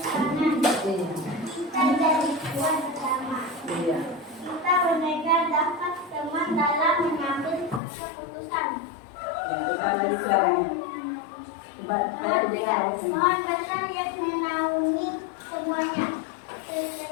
Pohon besar yang menaungi semuanya.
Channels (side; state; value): right; drops out; at 7.8 s